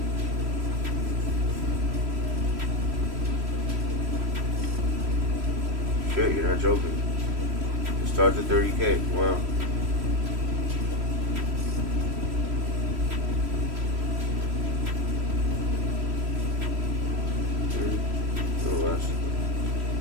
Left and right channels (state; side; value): late; left; 3.1 ms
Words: Shit, you're not joking. It starts at 30K. Wow. A little less.